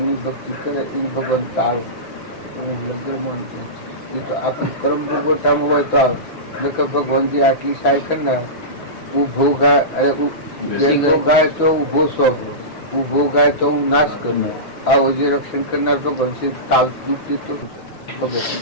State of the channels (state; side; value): late; right; 6.1 ms